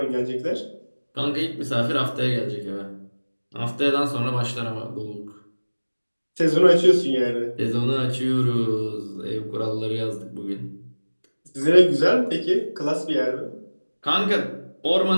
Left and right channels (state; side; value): inverted; both; correlation -1.00